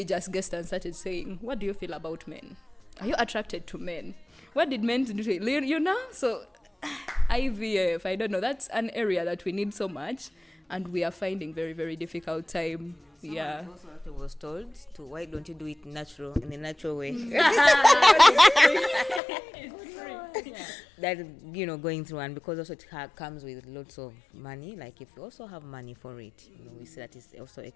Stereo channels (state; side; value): drops out; right; at 19.2 s